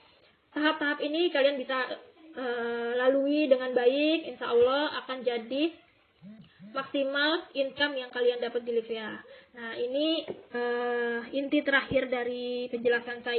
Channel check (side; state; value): both; identical; correlation 1.00